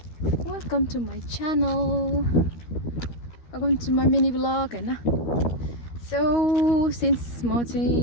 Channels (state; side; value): late; right; 13 ms